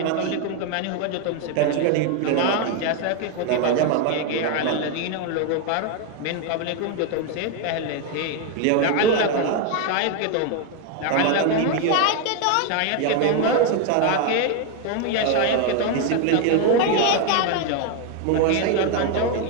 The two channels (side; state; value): both; different; correlation 0.01